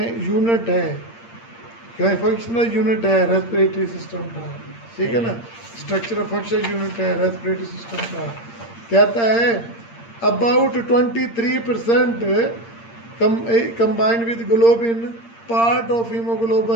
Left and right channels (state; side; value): late; right; 8.7 ms